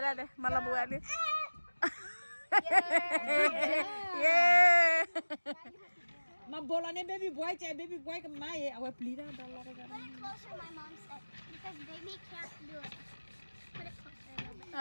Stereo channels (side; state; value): both; inverted; correlation -1.00